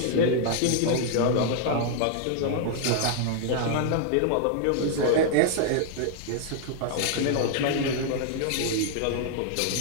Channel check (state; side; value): different; both; correlation -0.01